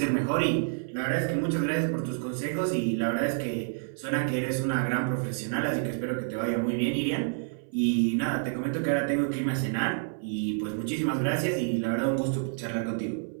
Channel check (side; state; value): left; silent; 59 dB below the other